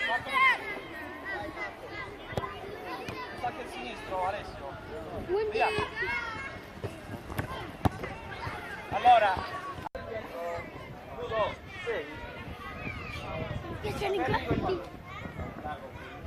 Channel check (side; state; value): both; identical; correlation 1.00